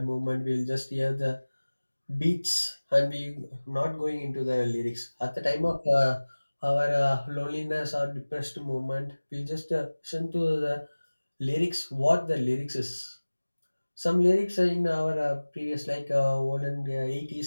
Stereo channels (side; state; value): both; inverted; correlation -1.00